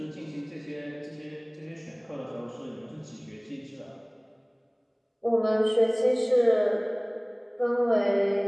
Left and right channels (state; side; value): identical; both; correlation 1.00